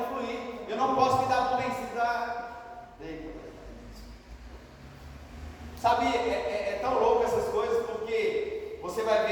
fluir. Eu não posso me dar por vencido. Sabe, é tão louco essas coisas, porque você vai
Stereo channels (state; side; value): identical; both; correlation 1.00